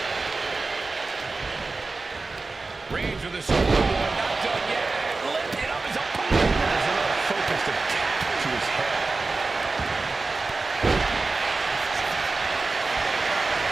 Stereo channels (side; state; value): left; quieter; 3.7 dB